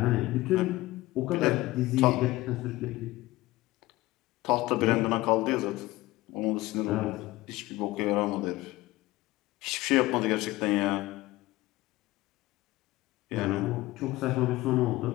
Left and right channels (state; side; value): quieter; right; 18.5 dB